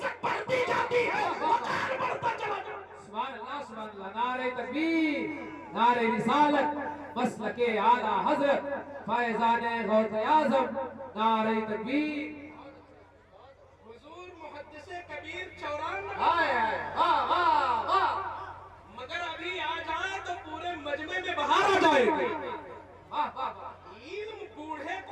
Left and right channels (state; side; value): identical; both; correlation 1.00